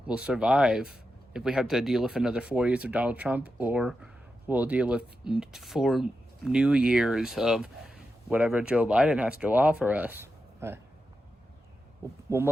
will survive if we have to deal with another 4 years of Donald Trump, or we'll deal with 4 new years of whatever Joe Biden has to offer us. We'll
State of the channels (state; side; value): normal; both; correlation 0.89